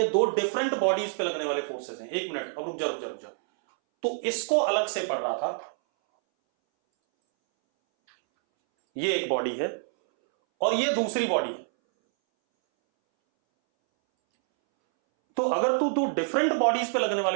दो डिफरेंट बॉडीज पे लगने वाले फोर्सेस हैं। एक मिनट, अब रुक जा। तो इसको अलग से पढ़ रहा था, ये एक बॉडी है और ये दूसरी बॉडी है। तो अगर तू डिफरेंट बॉडीज पे लगने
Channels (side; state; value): left; silent; 60 dB below the other